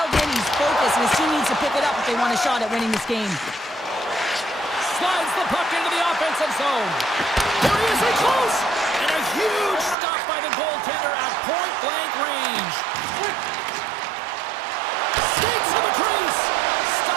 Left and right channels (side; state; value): left; drops out; at 10.0 s